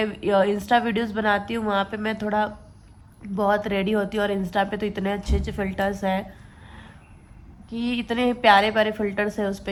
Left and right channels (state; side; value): identical; both; correlation 1.00